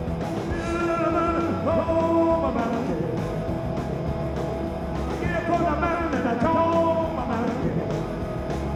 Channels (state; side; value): identical; both; correlation 1.00